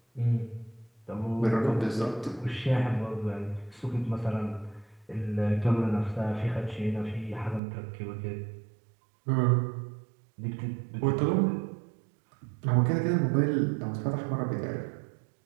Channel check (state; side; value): drops out; left; at 7.6 s